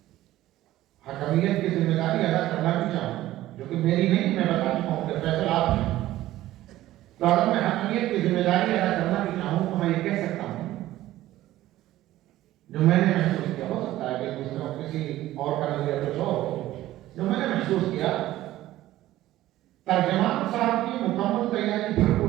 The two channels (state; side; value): quieter; left; 15.1 dB